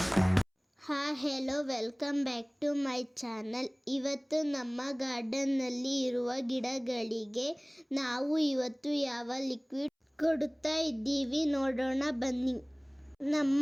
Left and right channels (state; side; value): identical; both; correlation 1.00